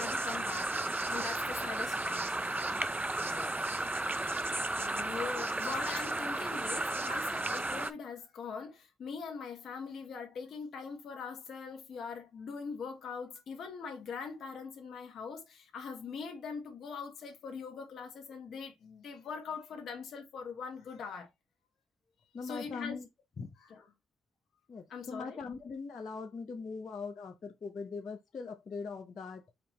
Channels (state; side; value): normal; both; correlation 0.77